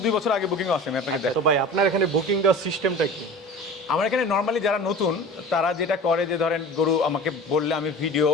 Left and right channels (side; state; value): both; normal; correlation 0.37